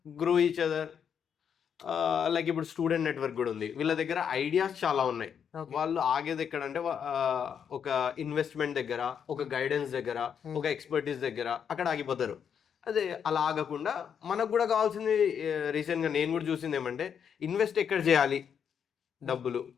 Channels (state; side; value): quieter; right; 7.7 dB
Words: grow each other. Like ఇప్పుడు స్టూడెంట్ నెట్వర్క్ కూడా ఉంది. వీళ్ళ దగ్గర ఐడియాస్ చాలా ఉన్నాయి. వాళ్ళు ఆగేది ఎక్కడంటే ఒక ఇన్వెస్ట్మెంట్ దగ్గర, ఒక గైడెన్స్ దగ్గర, ఒక ఎక్స్పర్టీస్ దగ్గర అక్కడ ఆగిపోతారు. అదే అలా ఆగకుండా మనకు కూడా కావాల్సింది, రీసెంట్గా నేను కూడా చూసింది ఏమంటే ఇన్వెస్ట్ ఎక్కడ చేయాలి డబ్బులు,